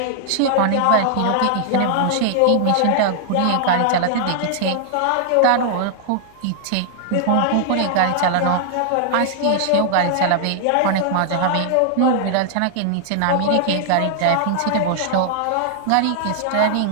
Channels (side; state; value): both; different; correlation 0.00